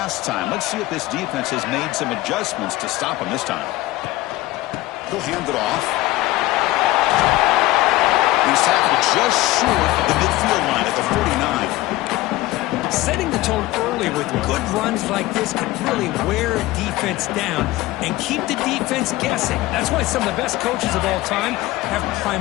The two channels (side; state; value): right; quieter; 17.9 dB